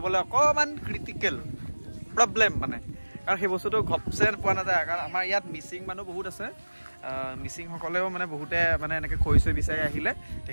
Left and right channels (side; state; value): both; inverted; correlation -1.00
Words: অকণমান ক্ৰিটিকেল প্ৰব্লেম মানে কাৰণ সেই বস্তুটো ঘপচে পোৱা নাযায় কাৰণ আমাৰ ইয়াত মিচিং মানুহ বহুত আছে মিচিংসকলেও মানে বহুতে মানে এনেকৈ খৰি চৰি বিচাৰি আহিলে